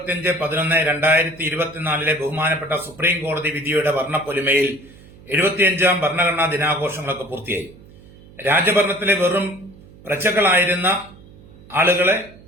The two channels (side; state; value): right; noise; hum, 22 dB below the sound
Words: ബഹുമാനപ്പെട്ട സുപ്രീം കോടതി വിധിയുടെ വർണ്ണപ്പൊലിമയിൽ 75ാം ഭരണഘടനാ ദിനാഘോഷങ്ങളൊക്കെ പൂർത്തിയായി. രാജഭരണത്തിലെ വെറും പ്രജകളായിരുന്ന ആളുകളെ